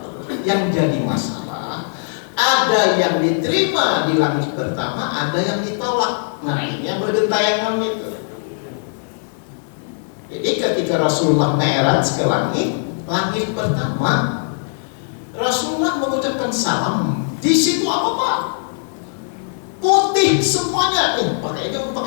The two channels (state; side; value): silent; right; digital silence